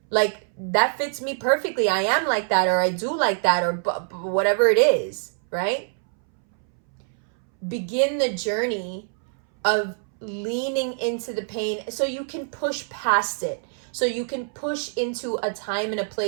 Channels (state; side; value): silent; left; 62 dB below the other